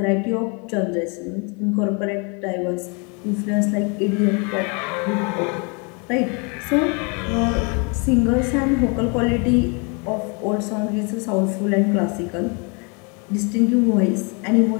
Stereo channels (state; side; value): quieter; right; 33.3 dB